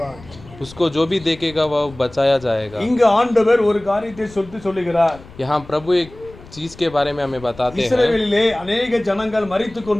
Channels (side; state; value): left; noise; rumble, 20 dB below the sound